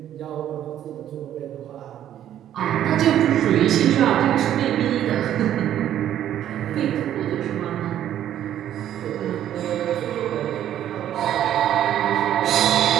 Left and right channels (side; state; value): left; quieter; 11.2 dB